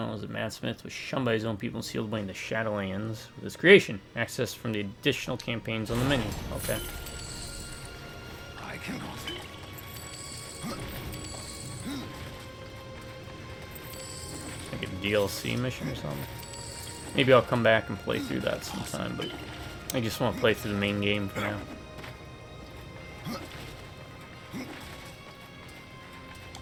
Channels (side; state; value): both; identical; correlation 1.00